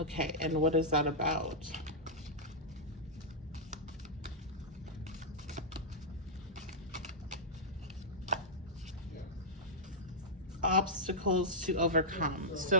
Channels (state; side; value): normal; both; correlation -0.10